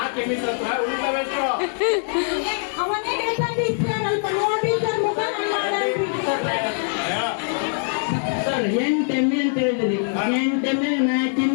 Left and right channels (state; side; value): silent; right; digital silence